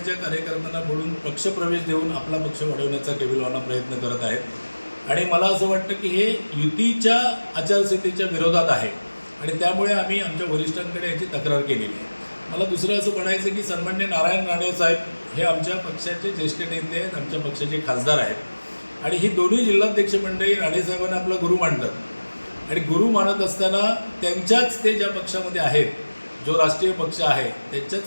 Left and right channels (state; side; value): inverted; both; correlation -1.00